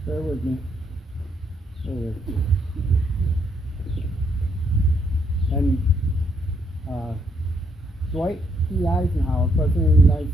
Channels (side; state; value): both; normal; correlation 0.73